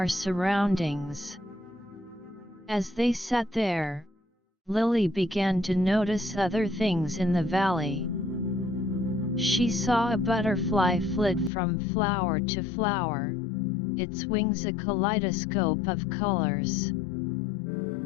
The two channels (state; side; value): drops out; right; at 11.5 s